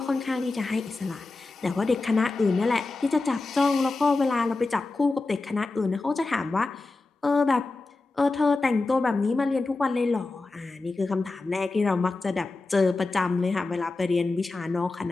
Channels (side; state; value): right; quieter; 3.5 dB